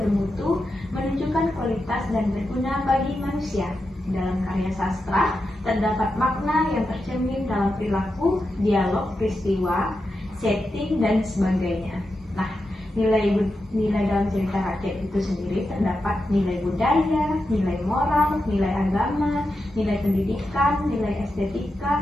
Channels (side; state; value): both; normal; correlation 0.89